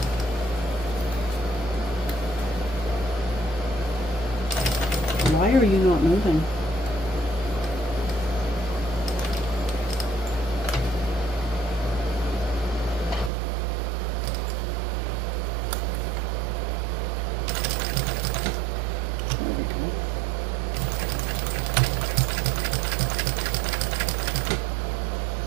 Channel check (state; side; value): drops out; left; at 13.3 s